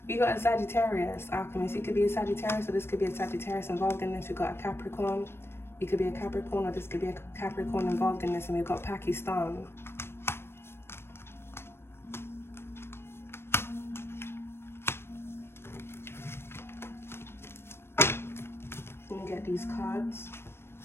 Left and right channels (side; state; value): right; late; 0.12 ms